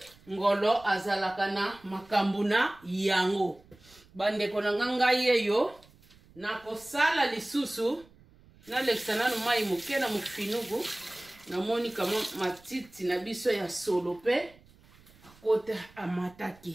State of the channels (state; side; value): noise; right; rumble, 26 dB below the sound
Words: Ngolo azalaka na makambo na yango. Bandeko na ngai yeyo na kosala lisusu na lekisana no mai muke na mufinugu na moni kama matiti na biso ya solo pe akota